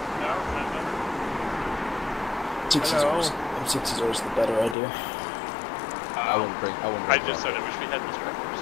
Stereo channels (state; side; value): drops out; right; at 4.8 s